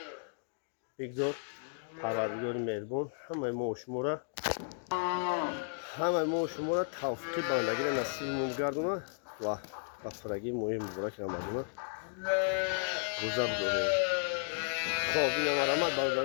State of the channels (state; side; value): silent; right; digital silence